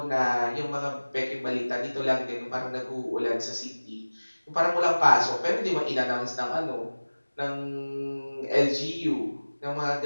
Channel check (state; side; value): inverted; both; correlation -1.00